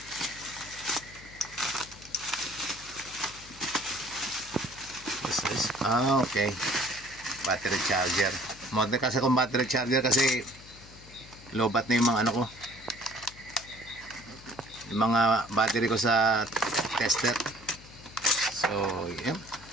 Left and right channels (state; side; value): noise; left; hum, 20 dB below the sound